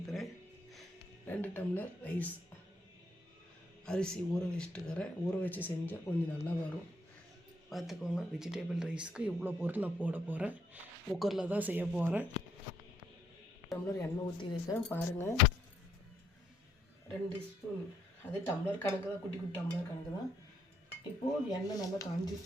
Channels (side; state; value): both; normal; correlation 0.72